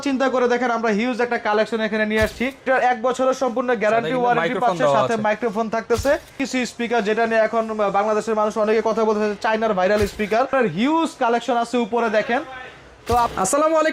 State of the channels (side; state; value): both; identical; correlation 1.00